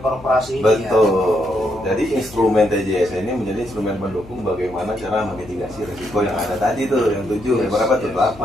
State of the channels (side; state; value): left; noise; hum, 19 dB below the sound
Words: Betul. Jadi instrumen TJS ini menjadi instrumen pendukung bagaimana cara memitigasi risiko yang ada tadi tuh, yang 7, yang berapa tuh?